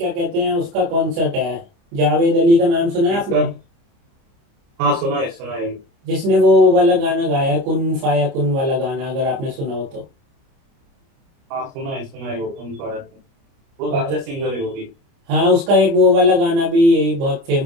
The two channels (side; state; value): left; late; 30 ms